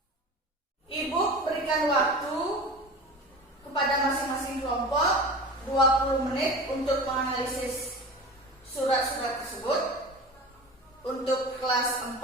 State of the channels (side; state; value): both; normal; correlation 0.34